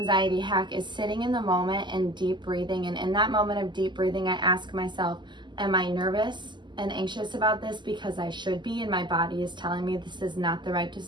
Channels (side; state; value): left; late; 0.22 ms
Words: hack is sitting in the moment and deep breathing. And in that moment of deep breathing, I ask myself, am I nervous and anxious about this because I should be and my body is telling me this is not the right